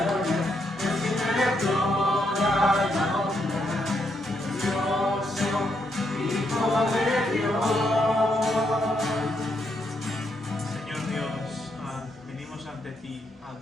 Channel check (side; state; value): both; normal; correlation 0.78